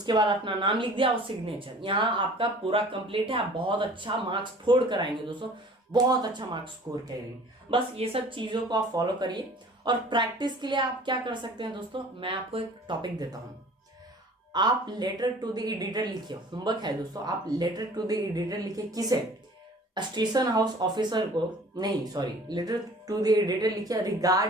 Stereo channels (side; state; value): both; normal; correlation 0.48